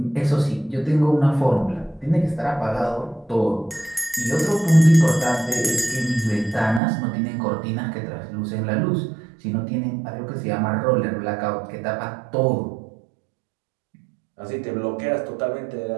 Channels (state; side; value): drops out; left; at 6.8 s